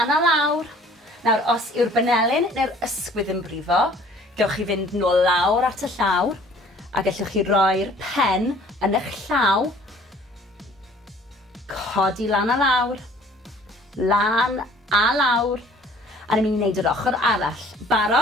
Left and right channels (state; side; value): normal; both; correlation 0.54